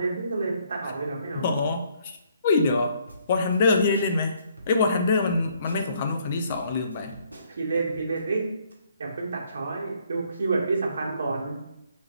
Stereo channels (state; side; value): inverted; both; correlation -0.67